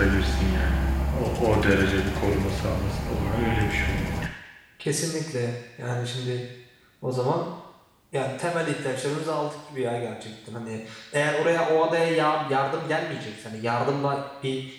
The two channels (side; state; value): both; identical; correlation 1.00